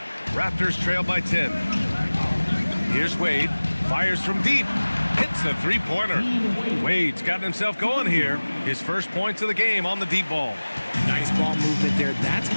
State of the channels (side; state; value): both; inverted; correlation -1.00